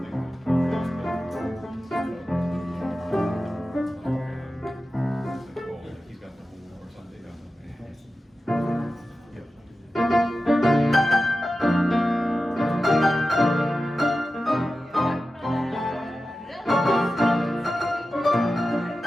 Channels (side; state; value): both; normal; correlation 0.93